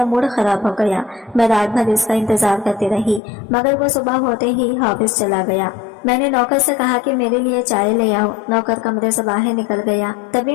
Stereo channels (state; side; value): drops out; right; at 3.2 s